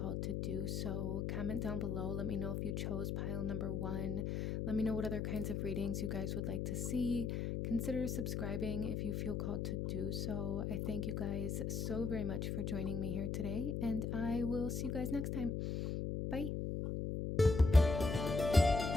to do so. Comment down below. Let me know if you chose pile number 1. Let me know what other kinds of readings you guys would like to see. Consider subscribing if you feel called to do so. I thank you guys so very much for joining me here today, and I will see you guys next time. Bye.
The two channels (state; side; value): noise; left; hum, 1 dB below the sound